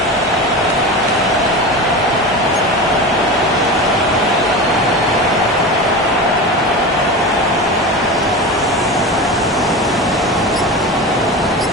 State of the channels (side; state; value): both; normal; correlation 0.27